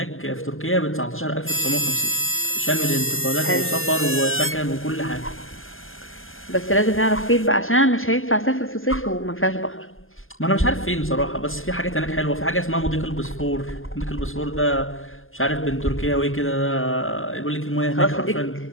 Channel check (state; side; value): late; right; 0.59 ms